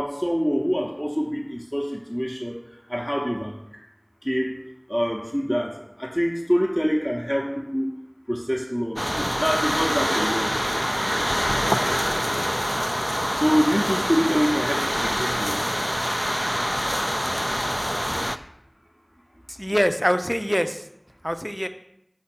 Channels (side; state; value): both; identical; correlation 1.00